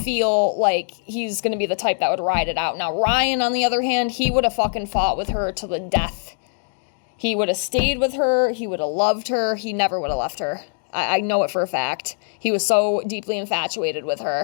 like he's going to be the type that would ride it out. Now, Ryan, on the other hand, he would have fucking fought with her to the death. He would have stayed with her. He would have loved her. He never would have left her. I know it for a fact. He was so deeply infatuated with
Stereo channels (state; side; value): silent; right; digital silence